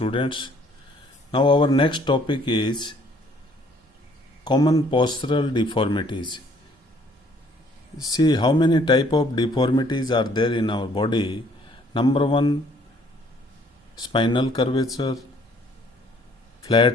Now our next topic is common postural deformities. See how many type of deformities are there in our body. Number one, spinal curvature,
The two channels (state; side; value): normal; both; correlation 0.61